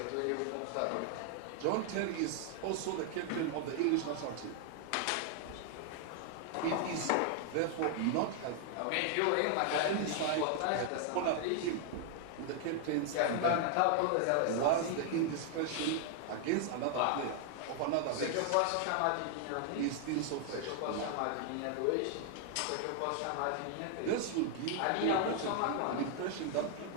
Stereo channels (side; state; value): both; different; correlation 0.00